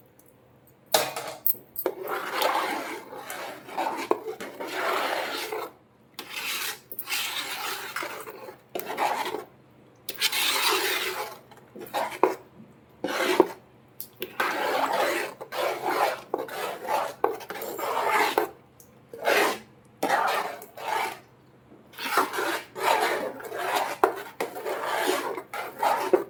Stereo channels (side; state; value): both; identical; correlation 1.00